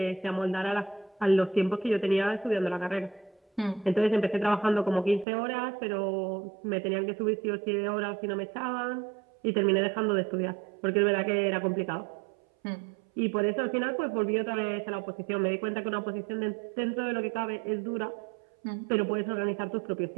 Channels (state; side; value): drops out; left; at 5.2 s